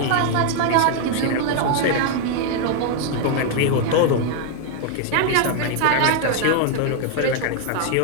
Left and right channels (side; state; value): both; different; correlation 0.00